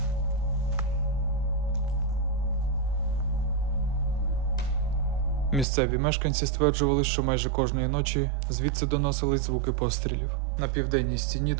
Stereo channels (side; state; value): left; drops out; at 5.7 s